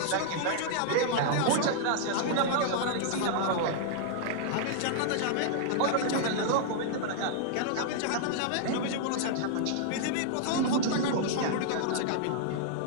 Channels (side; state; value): both; different; correlation -0.01